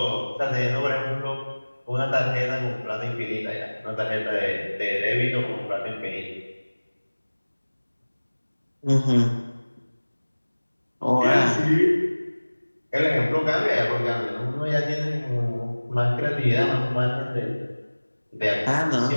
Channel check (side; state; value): both; inverted; correlation -1.00